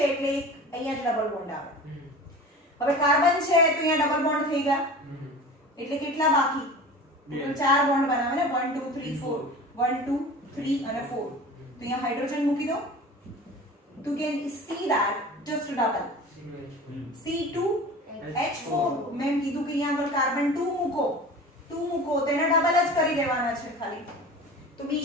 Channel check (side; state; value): both; normal; correlation 0.37